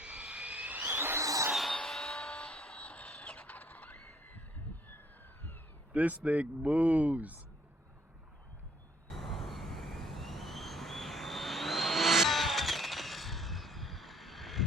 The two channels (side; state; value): both; normal; correlation 0.63